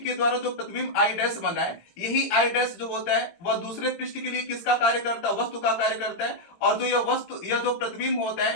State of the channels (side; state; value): right; late; 17 ms